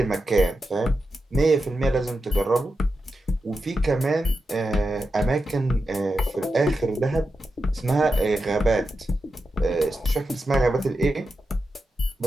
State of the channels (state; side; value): normal; both; correlation 0.89